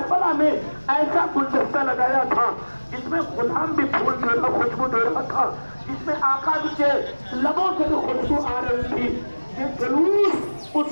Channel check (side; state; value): both; inverted; correlation -1.00